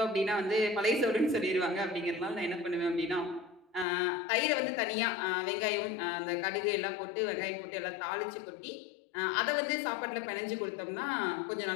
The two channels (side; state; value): right; drops out; at 3.9 s